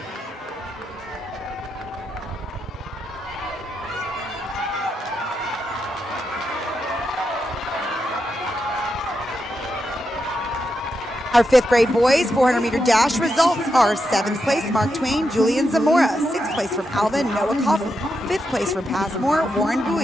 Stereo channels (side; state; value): both; normal; correlation 0.85